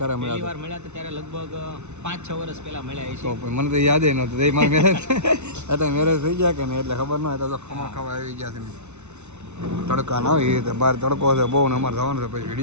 મળ્યા હતા ત્યારે લગભગ 5-6 વર્ષ પહેલા મળ્યા છે. તો મને તો યાદ નહોતું. એ મારે મેરેજ અત્યારે મેરેજ થઈ ગયા કે નહીં એટલે ખબર ન હોય. તો ખમણ ખાવા આવી ગયા છે ને તડકા ના હોય એ રીતે બહાર તડકો છે બહુ ને અમારે જવાનું છે પછી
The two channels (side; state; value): left; late; 0.82 ms